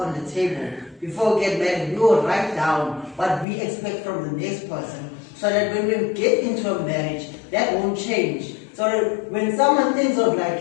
the table. Before we get married, we will write down what we expect from the next person, so that when we get into a marriage, that won't change. So that when someone thinks of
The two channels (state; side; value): drops out; right; at 3.5 s